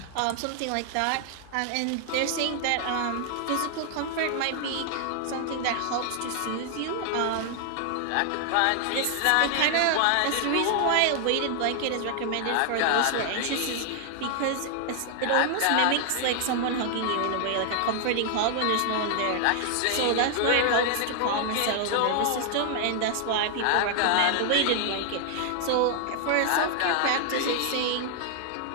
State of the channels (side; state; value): both; different; correlation 0.00